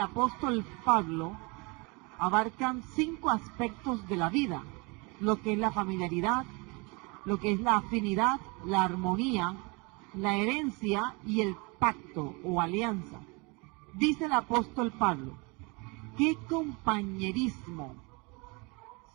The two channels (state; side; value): quieter; left; 29.0 dB